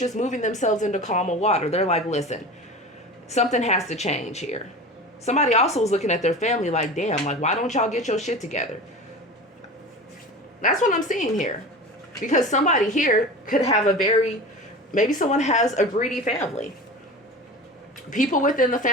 moving themselves into calmer water. They're like, listen, something has to change here. Somebody also is looking at their family like, damn, like, why don't y'all get your shit together? That's what I'm seeing here. Because somebody here could have maybe someone has a greedy family. People within the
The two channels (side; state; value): both; normal; correlation 0.33